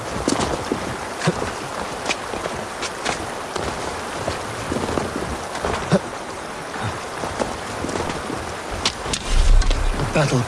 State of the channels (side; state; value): both; identical; correlation 1.00